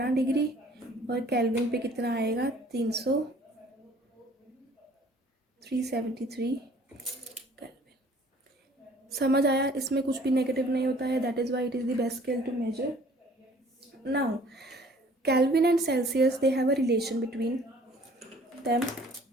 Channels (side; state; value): both; normal; correlation 0.54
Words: डिग्री, और केल्विन पे कितना आएगा 373 केल्विन। समझ आया, इसमें कुछ भी नेगेटिव नहीं होता है, that is why it is the best scale to measure. Now Kelvin and Celsius they have a relation between them.